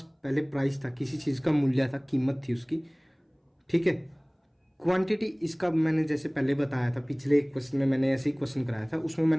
पहले प्राइस था, किसी चीज़ का मूल्य था, कीमत थी उसकी, ठीक है। क्वांटिटी इसका मैंने जैसे पहले बताया था, पिछले एक क्वेश्चन में मैंने ऐसे ही क्वेश्चन कराया था, उसमें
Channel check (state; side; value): identical; both; correlation 1.00